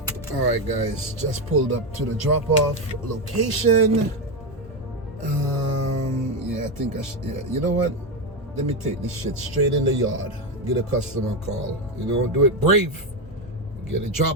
All right, guys, just pulled up to the drop-off location. Yeah, I think I should, you know what? Let me take this shit straight in the yard. Get a customer call. Do it brave. Get it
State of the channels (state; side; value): normal; both; correlation 0.11